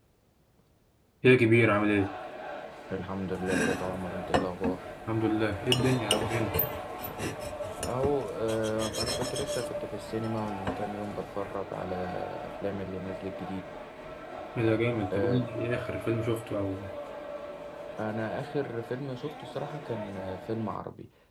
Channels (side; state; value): both; identical; correlation 1.00